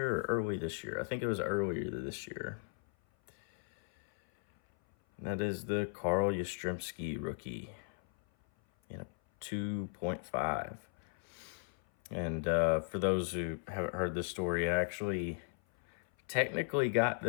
or early this year. I think it was earlier this year. That is the Carl Yastrzemski rookie in a 2.5. And for those who haven't heard this story, I actually technically got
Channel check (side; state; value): right; silent; 54 dB below the other